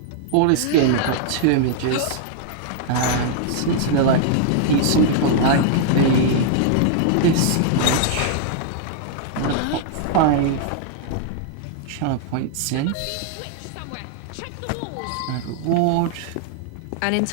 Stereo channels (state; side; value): different; both; correlation -0.01